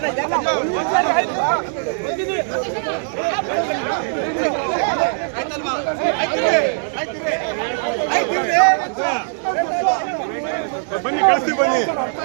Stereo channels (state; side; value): silent; left; digital silence